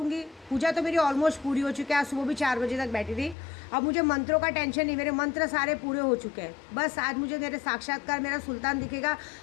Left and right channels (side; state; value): right; drops out; at 3.4 s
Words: पूजा तो मेरी ऑलमोस्ट पूरी हो चुकी है, आज सुबह भी 4 बजे तक बैठी थी। अब मुझे मंत्रों का टेंशन नहीं, मेरे मंत्र सारे पूरे हो चुके हैं। बस आज मुझे मेरे साक्षात्कार मेरा सुल्तान दिखेगा।